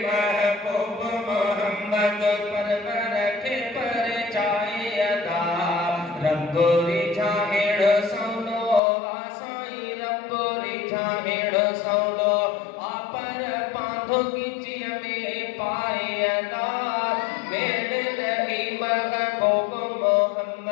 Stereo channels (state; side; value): drops out; right; at 8.8 s